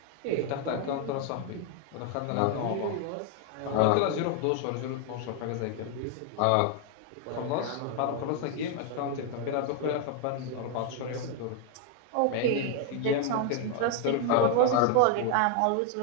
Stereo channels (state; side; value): different; both; correlation 0.00